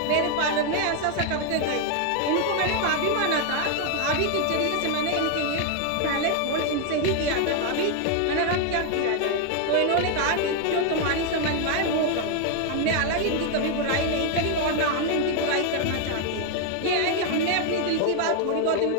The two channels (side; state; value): both; different; correlation 0.01